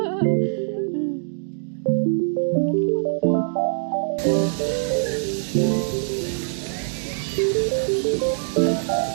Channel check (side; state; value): left; silent; digital silence